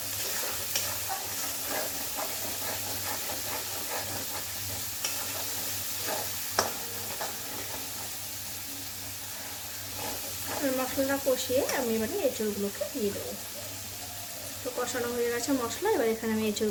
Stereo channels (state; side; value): identical; both; correlation 1.00